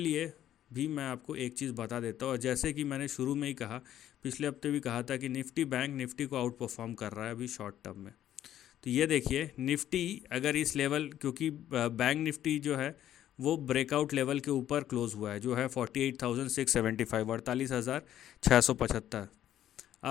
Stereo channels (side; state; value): right; quieter; 11.7 dB